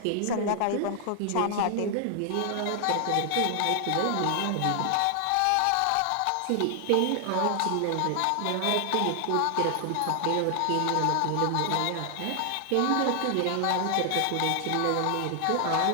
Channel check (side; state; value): both; different; correlation 0.00